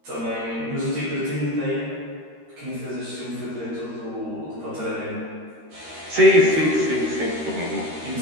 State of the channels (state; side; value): late; left; 13 ms